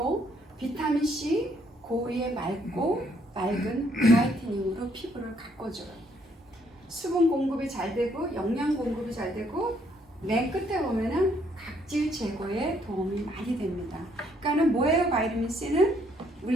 비타민 C 고위에 맑고 맑은 브라이트닝으로 피부를 가꿔줘요. 수분 공급이 잘 되고 영양 공급이 잘 되고 맨 끝에 보면은 각질 제거에 도움이 많이 됩니다. 그러니까는 뭐예요? 바이타민 C는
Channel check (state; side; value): normal; both; correlation 0.69